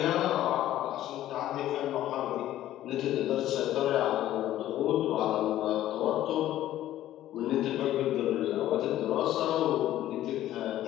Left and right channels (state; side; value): quieter; right; 13.3 dB